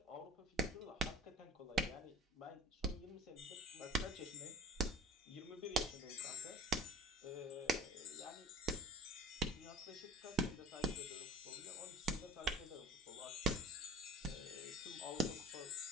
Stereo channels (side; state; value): both; normal; correlation 0.42